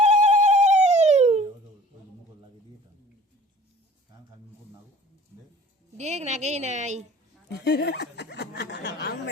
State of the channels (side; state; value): both; normal; correlation 0.47